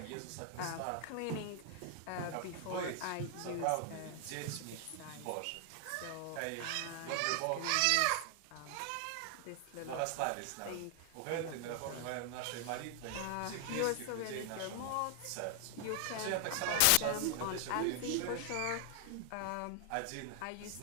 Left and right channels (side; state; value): both; different; correlation 0.00